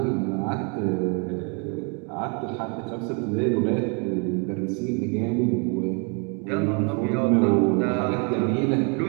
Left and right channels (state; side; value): quieter; left; 35.6 dB